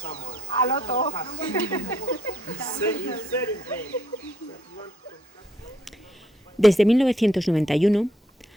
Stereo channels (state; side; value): normal; both; correlation 0.69